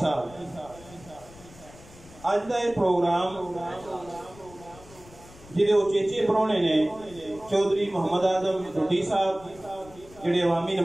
साहब। अज का यह प्रोग्राम जिहदे उचेचे परौने ने चौधरी मोहम्मद आजम ढुड्डी साहब जिहड़े अवामी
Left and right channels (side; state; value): left; noise; rumble, 21 dB below the sound